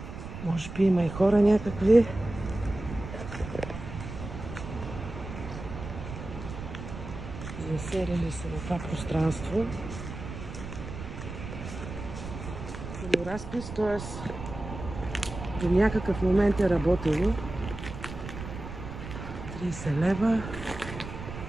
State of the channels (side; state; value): right; noise; rumble, 9 dB below the sound